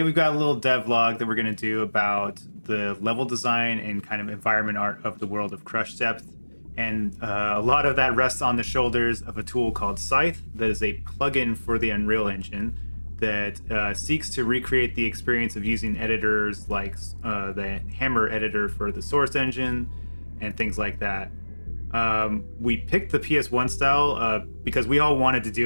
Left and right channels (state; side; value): inverted; both; correlation -1.00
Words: we've got a little devlog that we're going to do about the level design and kind of environment art of the world of Crush Depth. And a lot of that rests on the shoulders of a tool called Scythe, that is a plugin for the Unreal Engine that seeks to recreate the experience of using editors like the Hammer editor for the Source Engine and things like that. We picked the PS1 style because we all wanted to